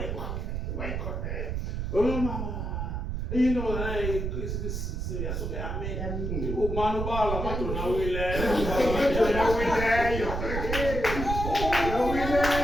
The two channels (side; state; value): right; noise; rumble, 3 dB below the sound